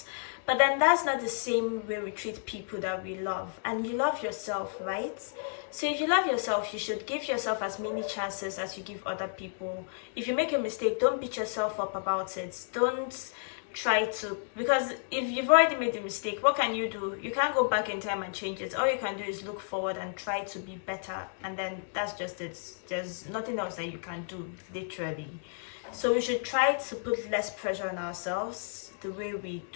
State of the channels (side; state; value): right; silent; digital silence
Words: But then that's not the same way we treat people that we love. And you love yourself, right? So if you love yourself, you should give yourself as many chances as you give other people. If you make a mistake, don't beat yourself up about it. Don't try to, because if you've already made the mistake, what can you do? You can't go back in time and change it. All you can do is look forward and try to be better, and then that's just it. There's nothing else that you can do, literally. So we should try to put less pressure on ourselves the way we